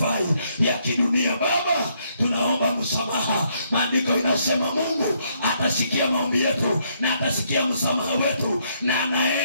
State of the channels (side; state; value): both; inverted; correlation -0.72